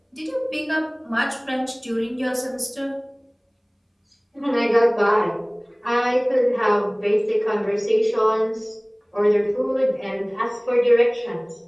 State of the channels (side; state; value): both; identical; correlation 1.00